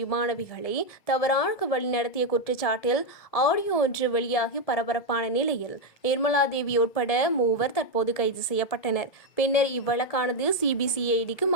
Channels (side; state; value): right; late; 1.8 ms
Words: மாணவிகளை தவறாக வழிநடத்திய குற்றச்சாட்டில் ஆடியோ ஒன்று வெளியாகி பரபரப்பான நிலையில் நிர்மலா தேவி உட்பட 3 தற்போது கைது செய்யப்பட்டனர். பின்னர் இவ்வழக்கானது சிபிசிஐடிக்கு